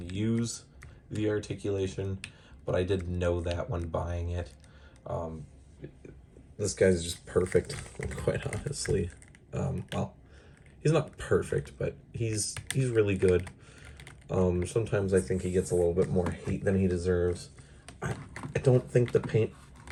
use the articulation, but I did know that when buying it. This guy's just perfect, quite honestly. Well, he's not perfect, but he's really good. Sometimes I think he gets a little bit more hate than he deserves. I don't think the paint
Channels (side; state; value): both; identical; correlation 1.00